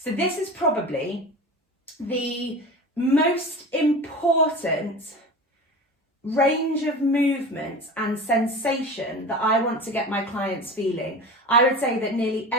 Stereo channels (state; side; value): normal; both; correlation 0.31